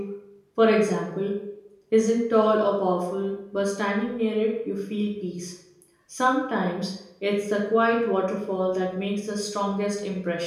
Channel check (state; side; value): identical; both; correlation 1.00